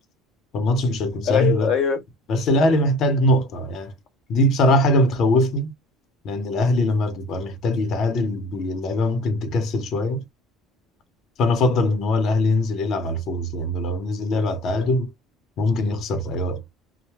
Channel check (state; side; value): normal; both; correlation 0.46